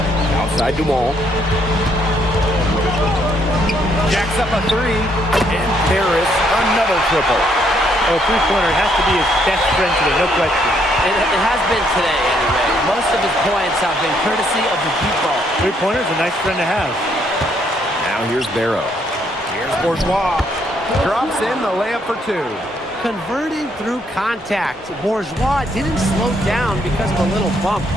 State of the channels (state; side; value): normal; both; correlation 0.71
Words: Outside Dumont. Jacks up a three. And Paris, another triple. Oh, three-pointer has to be his best friend today, no question. It has been today, anyway. Most of his points have been courtesy of the deep ball. Three-pointer's a nice friend to have. Now here's Barrow. Here's Bourgeois. Drops in the layup for two. Converting through contact. Bourgeois didn't slow down because of a little bump.